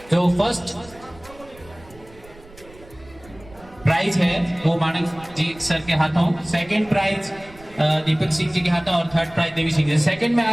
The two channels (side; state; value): right; noise; rumble, 22 dB below the sound